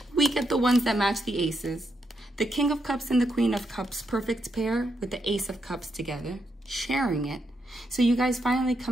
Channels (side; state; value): both; normal; correlation 0.81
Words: we get the ones that match the aces. The King of Cups and the Queen of Cups, perfect pair with the Ace of Cups together, sharing it. So you guys finally